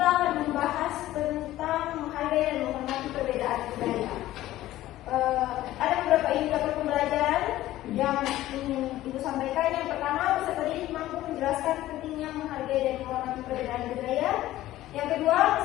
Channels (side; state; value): right; quieter; 15.0 dB